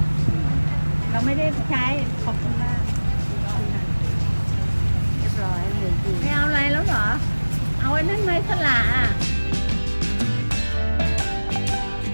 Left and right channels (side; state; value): both; inverted; correlation -1.00